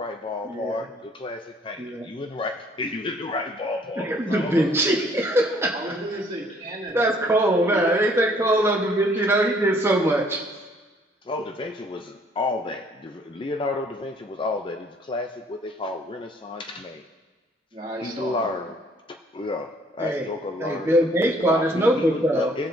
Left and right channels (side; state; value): both; normal; correlation 0.61